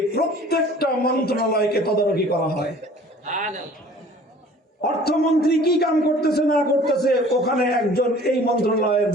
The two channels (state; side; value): normal; both; correlation 0.49